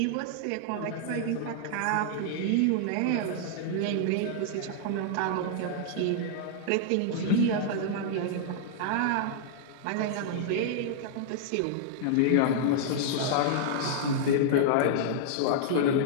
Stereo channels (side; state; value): both; different; correlation -0.01